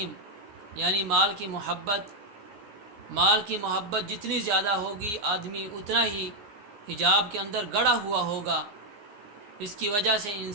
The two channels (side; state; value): left; late; 15 ms